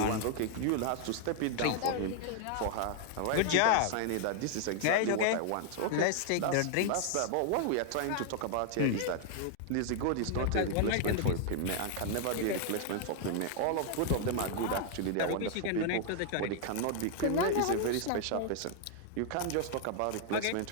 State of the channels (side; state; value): both; different; correlation 0.00